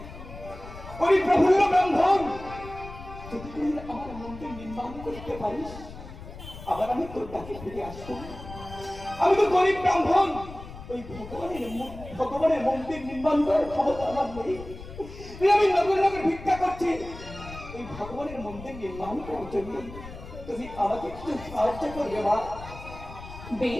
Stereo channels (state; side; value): noise; left; rumble, 14 dB below the sound